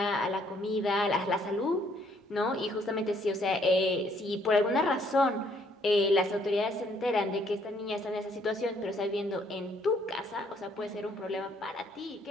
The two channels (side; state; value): both; normal; correlation 0.66